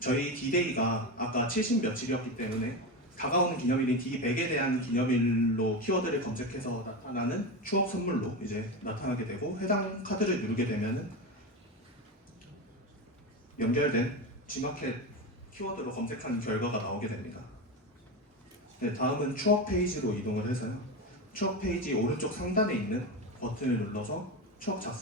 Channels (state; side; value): normal; both; correlation 0.19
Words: D-Day가 아까 70 며칠이었기 때문에 다가오는 기념일인 D100에 대한 기념일로 키워드를 검색해서 나타나는 추억 선물로 이제 나타나게 되고 해당 카드를 누르게 되면은 연결된 G마켓 키워드로 검색한 결과가 나오게 됩니다. 네, 다음은 추억 페이지로 이동을 해서요. 추억 페이지 오른쪽 상단에 있는 버튼을 눌러서 추억